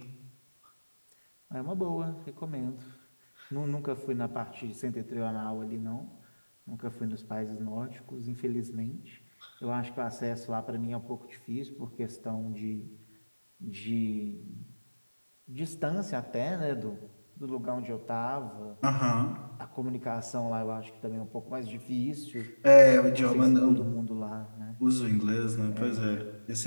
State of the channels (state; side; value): inverted; both; correlation -1.00